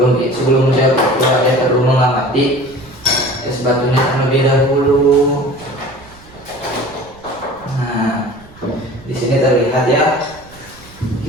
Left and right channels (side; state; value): right; noise; rumble, 24 dB below the sound